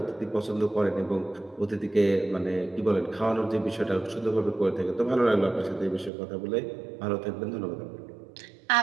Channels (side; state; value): left; drops out; at 6.1 s